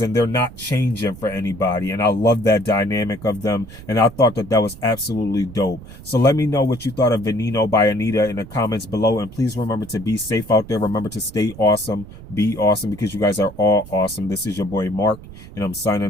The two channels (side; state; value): right; noise; rumble, 16 dB below the sound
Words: and they're not changing for anybody. And I love that dynamic of them, and I thought that was absolutely dope. So let me know what you thought of Veneno by Anitta in the comments below, and please remember to be safe out there. Remember to stay awesome, be awesome, because you guys are all awesome. This is your boy Mark, and I'm